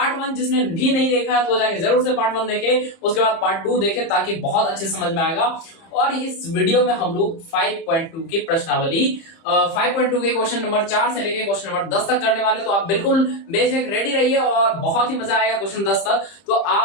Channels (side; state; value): right; late; 30 ms